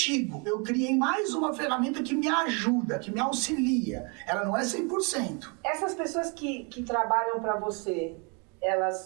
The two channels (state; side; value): quieter; left; 33.8 dB